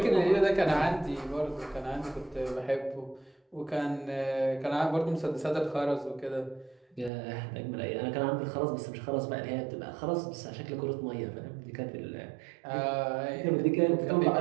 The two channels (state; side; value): drops out; left; at 7.1 s